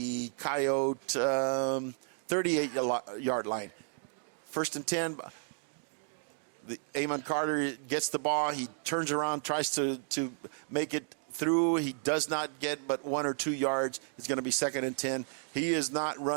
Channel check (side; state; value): left; silent; 56 dB below the other